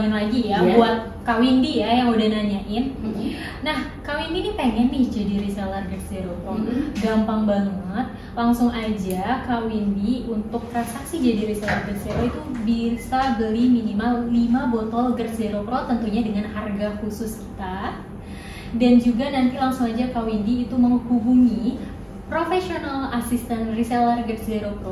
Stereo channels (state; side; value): identical; both; correlation 1.00